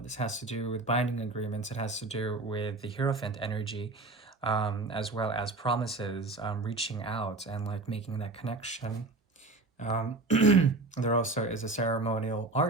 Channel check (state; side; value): quieter; left; 3.2 dB